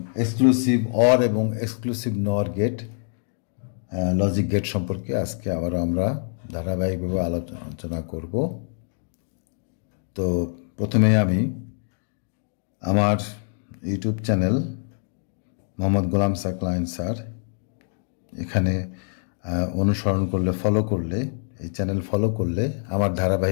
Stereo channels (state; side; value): silent; right; 62 dB below the other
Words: এক্সক্লুসিভ অর এবং এক্সক্লুসিভ নর গেট লজিক গেট সম্পর্কে আজকে আবার আমরা ধারাবাহিকভাবে আলোচনা করব। তো প্রথমে আমি আমার YouTube channel Mohammad Golam Saqlain sir এখানে অনুসরণ করলে ফলো করলে এই চ্যানেল ফলো করলে আমার